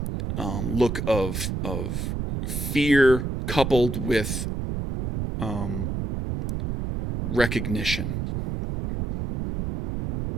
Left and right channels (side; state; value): right; noise; rumble, 3 dB below the sound